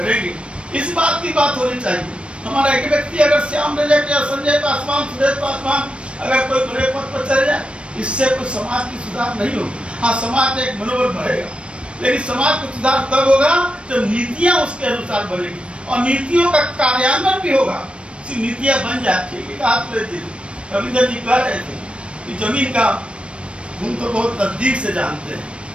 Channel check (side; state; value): left; late; 0.059 ms